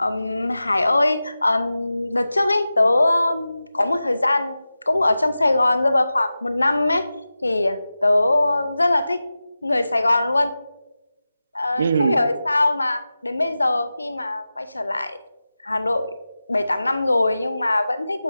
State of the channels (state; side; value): inverted; both; correlation -0.94